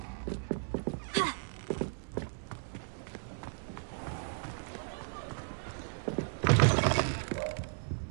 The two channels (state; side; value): silent; left; digital silence